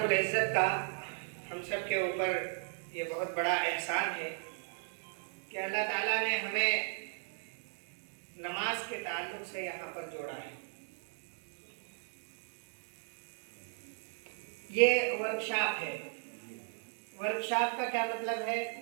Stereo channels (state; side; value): silent; left; 54 dB below the other